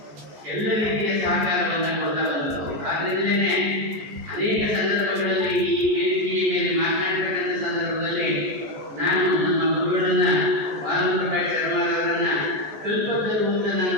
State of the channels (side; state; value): left; late; 14 ms